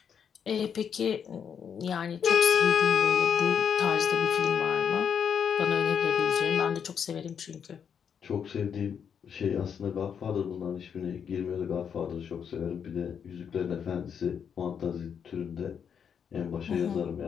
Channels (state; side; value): quieter; right; 7.5 dB